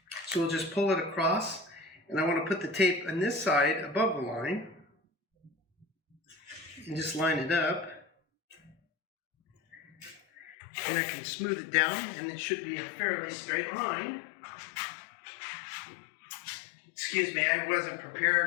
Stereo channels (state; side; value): drops out; right; at 10.6 s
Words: So we'll just pull it across, and I want to put the tape on this side above the line and just line it up, and I can smooth it down, and it should be a fairly straight line. Excuse me, I wasn't